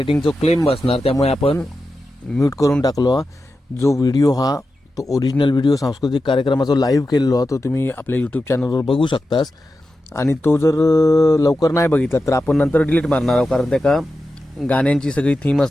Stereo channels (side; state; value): both; normal; correlation 0.91